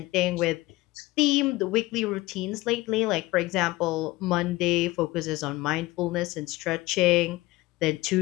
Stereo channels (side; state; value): right; quieter; 19.6 dB